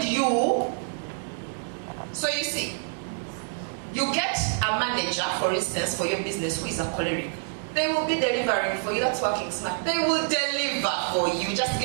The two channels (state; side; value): silent; left; digital silence